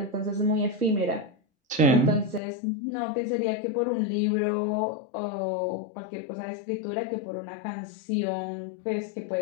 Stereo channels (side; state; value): right; drops out; at 2.4 s